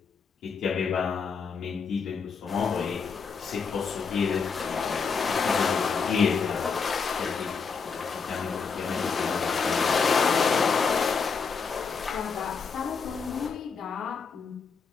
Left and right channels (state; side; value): quieter; right; 5.5 dB